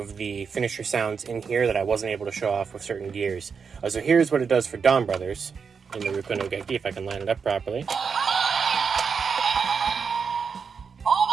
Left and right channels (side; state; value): left; quieter; 5.9 dB